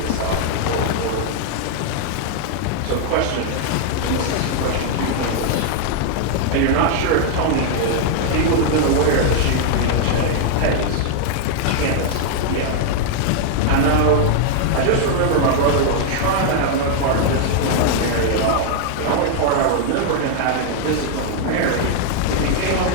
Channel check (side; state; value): both; different; correlation 0.00